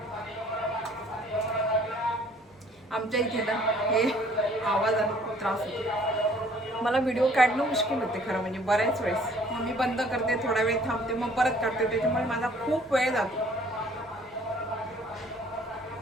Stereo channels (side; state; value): both; normal; correlation 0.57